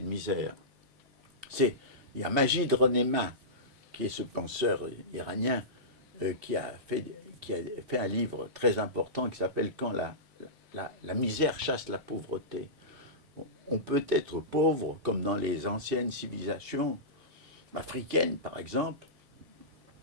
misère? Il y a Majid Renéma, qui est ce penseur iranien qui a fait un livre très important qui s'appelle « Quand la misère chasse la pauvreté ». On peut être pauvre comme dans les anciennes civilisations africaines, par exemple.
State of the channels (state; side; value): normal; both; correlation -0.17